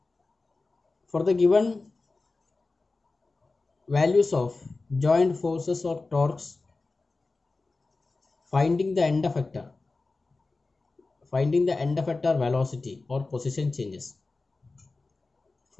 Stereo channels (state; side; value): quieter; right; 3.6 dB